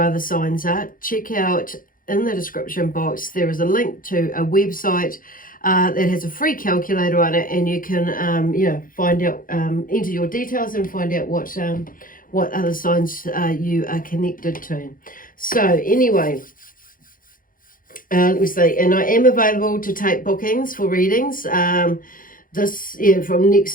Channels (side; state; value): right; late; 0.40 ms